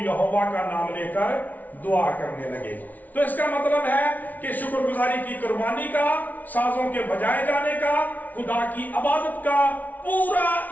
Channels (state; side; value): late; right; 0.077 ms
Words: का नाम लेकर दुआ करने लगे। तो इसका मतलब है कि शुक्रगुजारी की कुर्बानी का, साजों के बजाए जाने का, खुदा की इबादत का पूरा